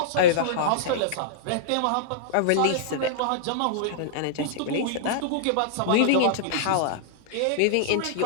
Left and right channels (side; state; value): both; different; correlation -0.02